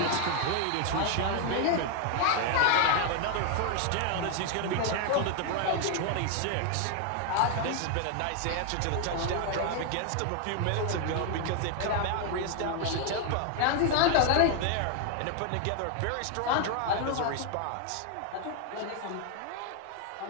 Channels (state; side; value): different; both; correlation 0.01